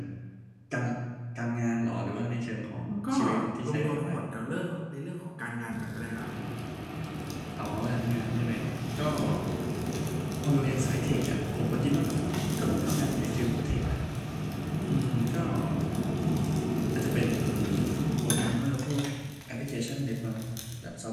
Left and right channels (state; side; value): identical; both; correlation 1.00